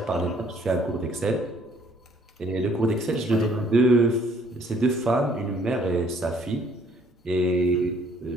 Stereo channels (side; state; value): both; normal; correlation 0.62